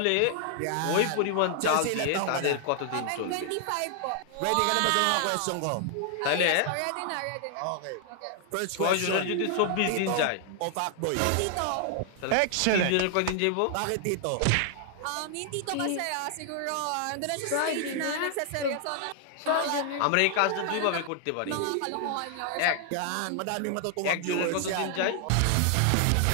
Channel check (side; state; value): both; different; correlation 0.00